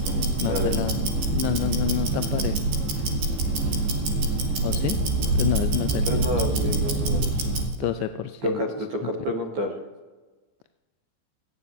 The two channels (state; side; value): late; left; 15 ms